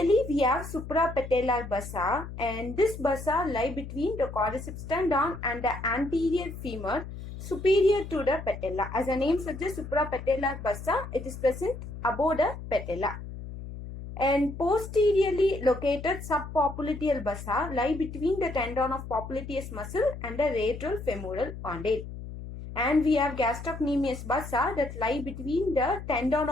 we have suprapatellar bursa, and this bursa lie between the quadriceps tendon and the anterior femur superior to the patella. As the name suggests, suprapatellar bursa, it is present above the patella. And posteriorly located subpopliteal bursa lie between the tendon of popliteus muscle and the retrofemoral condyle. And we have gastrocnemius bursa that lie between the tendon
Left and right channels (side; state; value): left; noise; hum, 10 dB below the sound